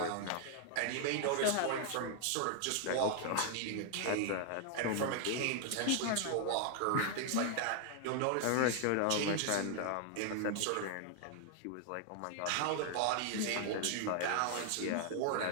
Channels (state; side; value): different; both; correlation 0.00